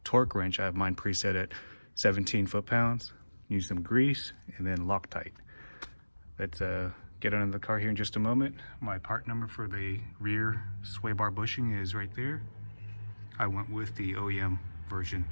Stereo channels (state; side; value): inverted; both; correlation -1.00